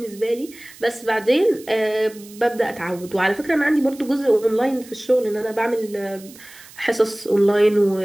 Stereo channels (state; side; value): noise; right; hiss, 21 dB below the sound